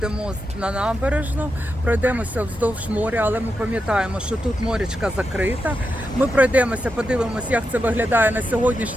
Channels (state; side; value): normal; both; correlation 0.87